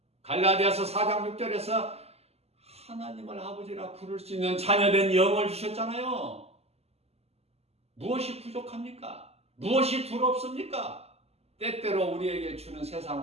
갈라디아서 4장 6절에서 하나님을 아버지라 부를 수 있는 자녀된 영을 주셨잖아요. 무엇이 부족합니까? 무엇이 두렵습니까? 때때로 우리에게 주는 세상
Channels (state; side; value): late; left; 0.30 ms